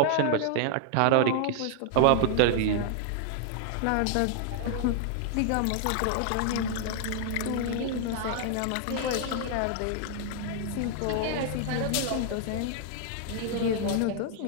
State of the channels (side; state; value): both; different; correlation -0.01